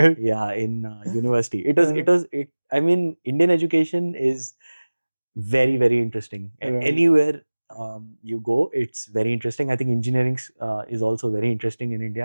university. I mean, Indian education is very, very interesting. Anywhere you go, it's very interesting. I think engineering is also very interesting in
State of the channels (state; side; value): inverted; both; correlation -1.00